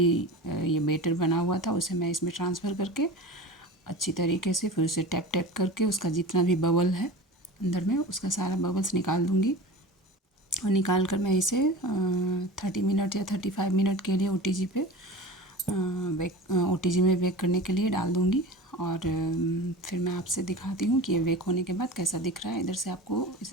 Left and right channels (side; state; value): both; normal; correlation 0.33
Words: ये बेटर बना हुआ था उसे मैं इसमें ट्रांसफ़र करके अच्छी तरीके से फिर उसे टैप टैप करके उसका जितना भी बबल है अंदर में उसका सारा बबल्स निकाल दूँगी। और निकाल कर मैं इसे 30 मिनट या 35 मिनट के लिए OTG पे OTG में बेक करने के लिए डाल दूँगी। और फिर मैं आपसे दिखाती हूँ कि ये बेक होने के बाद कैसा दिख रहा है। इधर से आपको